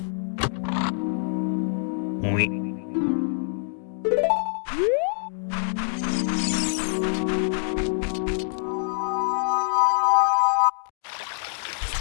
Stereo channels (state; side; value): silent; right; digital silence